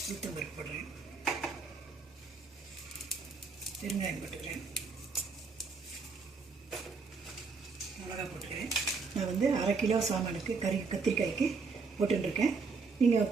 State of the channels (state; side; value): quieter; left; 4.6 dB